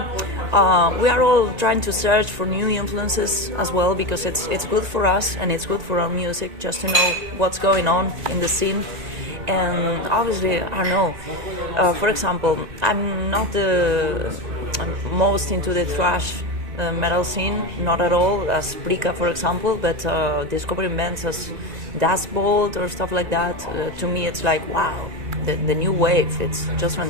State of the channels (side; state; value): left; late; 1.8 ms